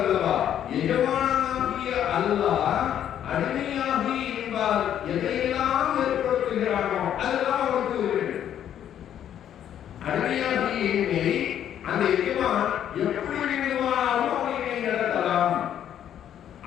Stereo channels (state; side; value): quieter; right; 10.2 dB